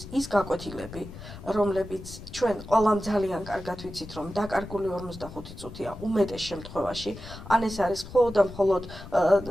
ის გაკვეთილები, რომლებიც ჩვენ ყველამ ძალიან კარგად ვიცით, რომ დაკარგული 45 წუთია უმეტეს შემთხვევაში, ან ეს არის მხოლოდ და მხოლოდ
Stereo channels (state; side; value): noise; left; rumble, 14 dB below the sound